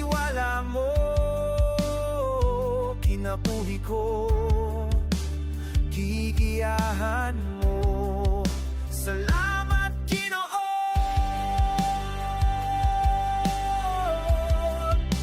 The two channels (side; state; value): both; identical; correlation 1.00